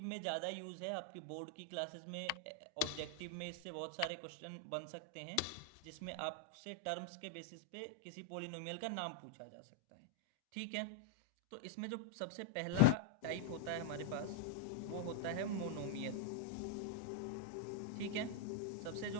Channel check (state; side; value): different; both; correlation 0.00